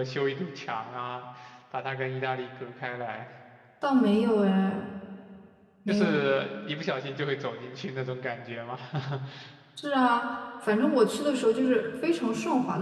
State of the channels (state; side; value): identical; both; correlation 1.00